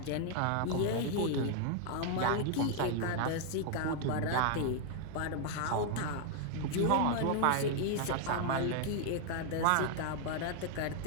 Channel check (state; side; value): different; both; correlation 0.00